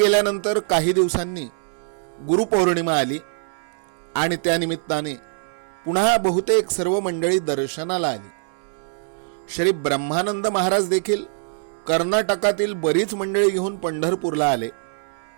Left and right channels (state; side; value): silent; left; digital silence